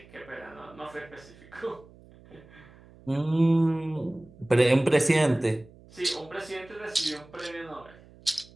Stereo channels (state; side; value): noise; right; hum, 24 dB below the sound